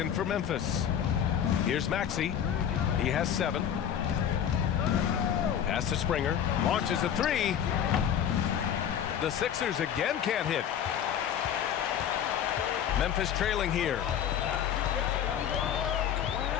for Memphis. Here's Maxey. He has 7. Pass to Springer. Launches a 3. The Sixers again can't hit. Memphis trailing here.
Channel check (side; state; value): right; quieter; 9.2 dB